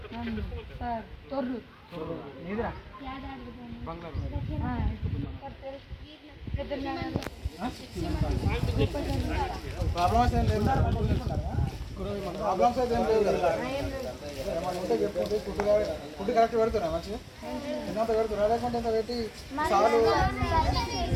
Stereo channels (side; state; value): both; identical; correlation 1.00